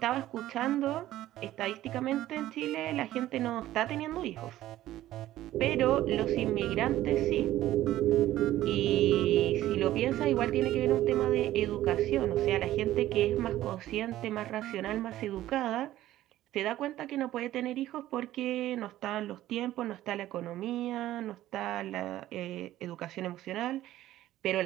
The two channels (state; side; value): quieter; left; 14.3 dB